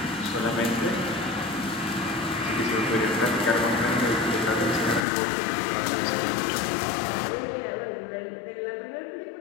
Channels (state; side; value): drops out; right; at 5.0 s